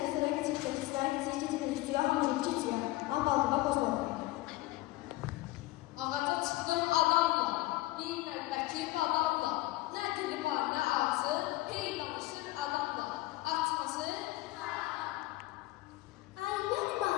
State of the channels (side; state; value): right; quieter; 18.7 dB